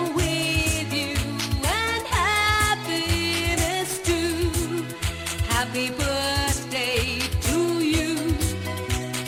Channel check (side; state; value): both; identical; correlation 1.00